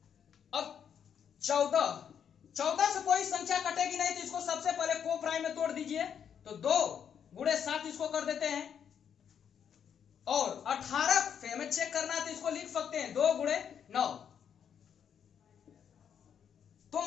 अब 14 से कोई संख्या कटेगी नहीं, तो इसको सबसे पहले को प्राइम में तोड़ दीजिए, तो 2 गुणे 7 इसको कर देते हैं, और 18 से हमें चेक करना है, तो इसको लिख सकते हैं 2 गुणे 9। तो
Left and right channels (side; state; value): right; quieter; 8.1 dB